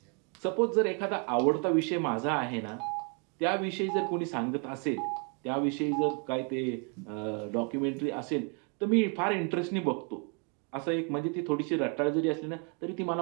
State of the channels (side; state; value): left; quieter; 37.0 dB